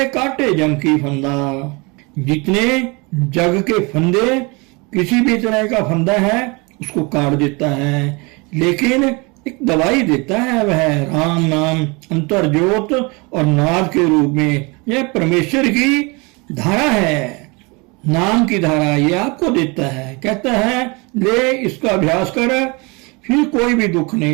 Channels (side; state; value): left; quieter; 28.1 dB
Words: काटे जम की फंदा। जितने जग के फंदे, किसी भी तरह का फंदा है उसको काट देता है, लेकिन एक दवाई देता है, वह राम नाम अंतर ज्योत और नाद के रूप में। यह परमेश्वर की धारा है, नाम की धारा, ये आपको देता है। कहता है ले इसका अभ्यास कर, फिर कोई भी दुख